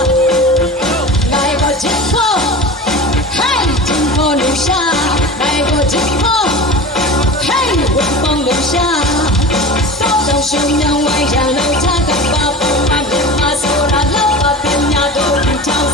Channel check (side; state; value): both; normal; correlation 0.33